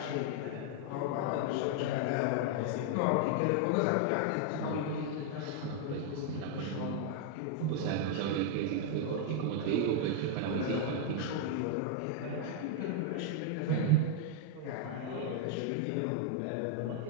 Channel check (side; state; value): both; different; correlation 0.00